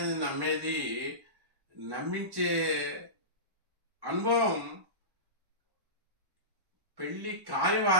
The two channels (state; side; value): late; left; 1.1 ms